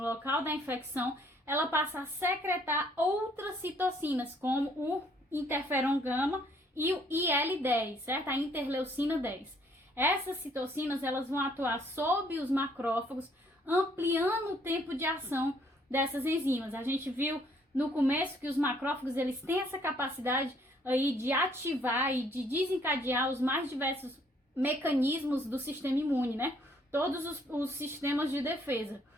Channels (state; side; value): normal; both; correlation 0.65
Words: da infecção, ela passa a secretar outras citocinas, como o interferon gama e o IL-10, certo? A interleucina 10. Essas citocinas, elas vão atuar sobre os macrófagos, ampliando o tempo de ação dessas enzimas. A gente viu no começo que os macrófagos, eles têm essa capacidade aí de ativar e de desencadear os mais diversos mecanismos do sistema imune, né? Todos os sistemas de defesa.